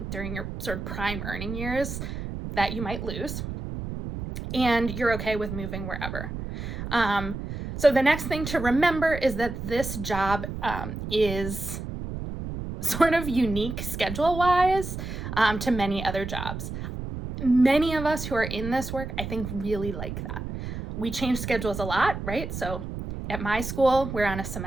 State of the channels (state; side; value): noise; right; rumble, 7 dB below the sound